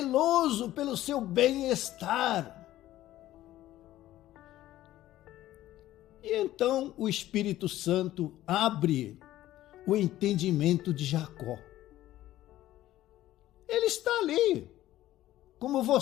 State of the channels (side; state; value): right; quieter; 14.4 dB